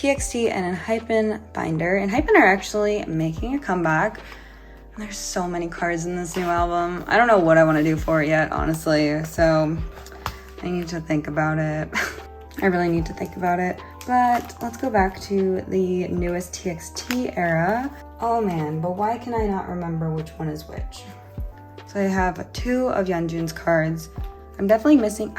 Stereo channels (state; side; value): identical; both; correlation 1.00